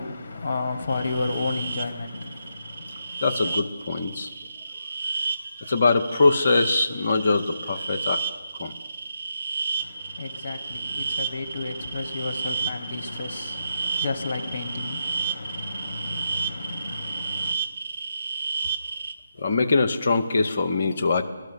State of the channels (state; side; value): inverted; both; correlation -0.84